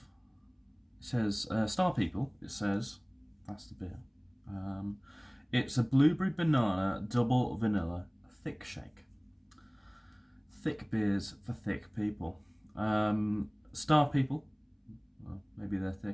it says Star People. It says that's the beer. It's a blueberry banana double vanilla thick shake. Thick beers for thick people. Star People. Well, maybe they're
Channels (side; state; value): both; identical; correlation 1.00